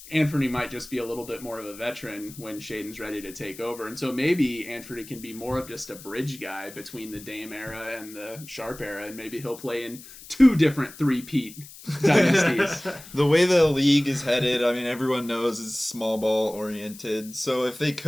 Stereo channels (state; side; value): noise; left; hiss, 17 dB below the sound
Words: Anfernee might just be a little bit more of a veteran when Shaedon's ready to take over. And so maybe Anfernee can be more of just a bridge guy between the Dame era and the Sharpe era, and maybe he'll play in 2 different three-peat dynasties. The way the league is headed, I mean, everyone knows is small ball oriented. So if